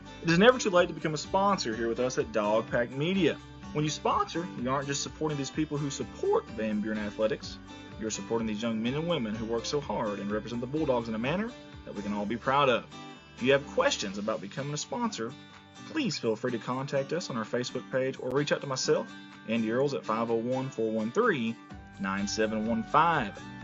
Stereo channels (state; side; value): identical; both; correlation 1.00